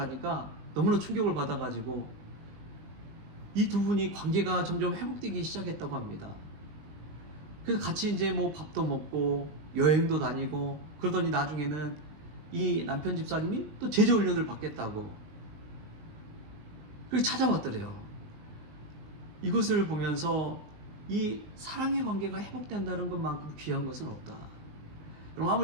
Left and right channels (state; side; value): late; left; 19 ms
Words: 너무나 충격을 받아가지고 이 두 분이 관계가 점점 회복되기 시작했다고 합니다. 그래서 같이 이제 뭐 밥도 먹고 여행도 다니고 그러더니 나중에는 이 남편 집사님이 또 제자훈련을 받겠다고 그렇게 찾아왔더래요. 이것을 보면서 이 사랑의 관계가 회복된다는 것만큼 귀한 것은 없다. 여러분,